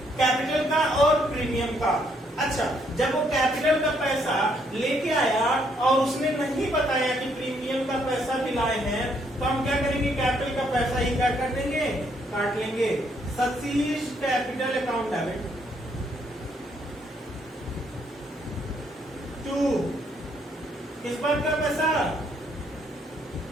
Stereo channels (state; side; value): normal; both; correlation 0.71